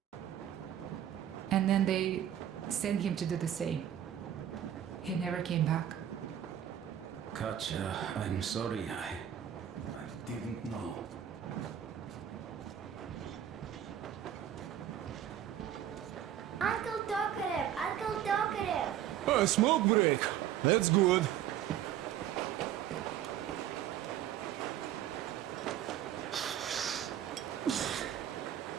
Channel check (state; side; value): quieter; left; 10.6 dB